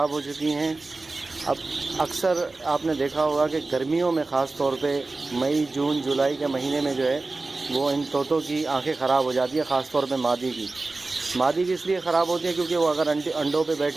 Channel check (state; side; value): quieter; left; 3.4 dB